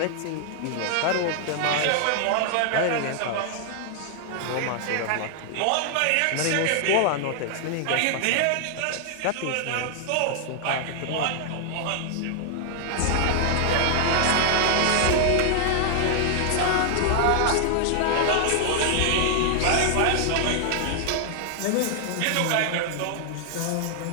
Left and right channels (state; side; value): different; both; correlation 0.00